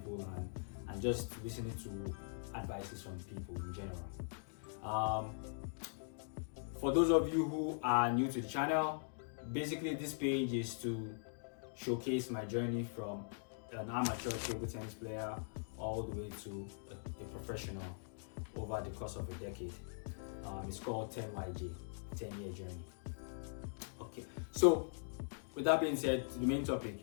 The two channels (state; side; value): silent; right; digital silence